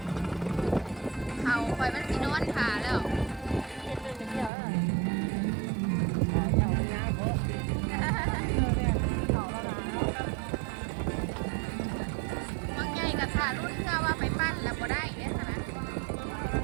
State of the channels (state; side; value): drops out; left; at 4.5 s